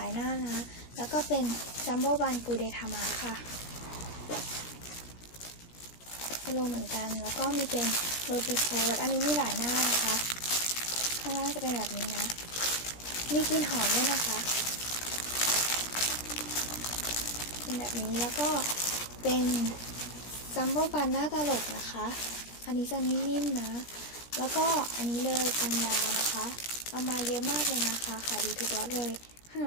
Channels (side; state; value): right; late; 17 ms